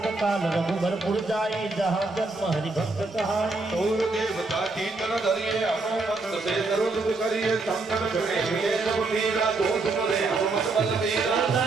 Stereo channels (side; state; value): left; quieter; 3.5 dB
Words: काल रघुबर पुर जाई जहाँ जन्म हरि भक्त कहाई और देवता कीर्तन धरिए हनुमत से सर्व दुख करिए संकट छुड़े मिले सब मीरा दोष मरे हनुमत बल मीरा